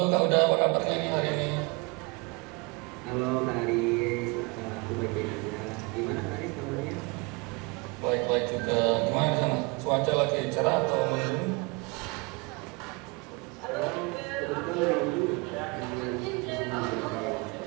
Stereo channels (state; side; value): quieter; left; 28.8 dB